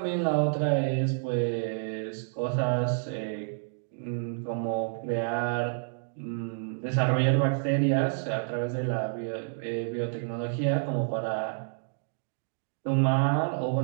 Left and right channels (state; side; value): silent; left; digital silence